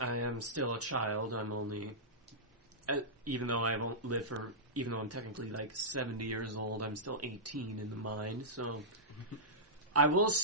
am still a child, I'm only, even though I'm technically like 70 years old, I'm still 18 in the mind. So, I will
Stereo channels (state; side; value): normal; both; correlation -0.14